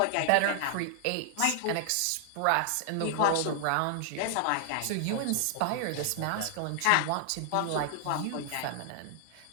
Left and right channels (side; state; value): both; different; correlation 0.00